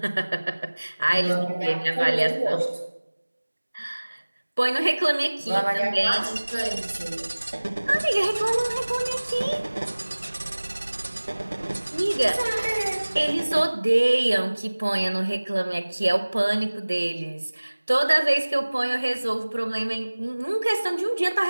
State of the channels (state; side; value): inverted; both; correlation -1.00